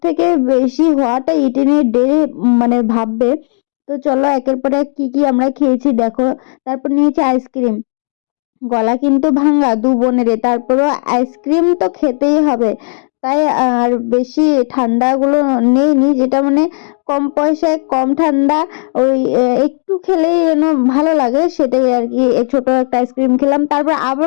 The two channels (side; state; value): right; silent; 58 dB below the other